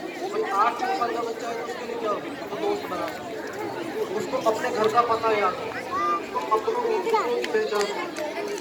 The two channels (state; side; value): identical; both; correlation 1.00